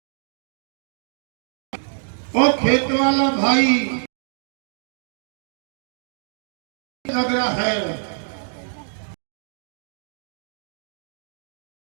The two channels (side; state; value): left; silent; digital silence